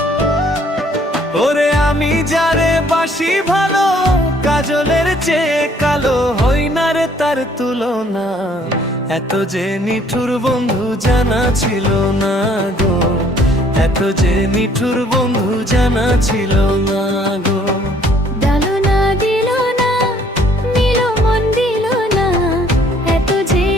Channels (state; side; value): normal; both; correlation 0.61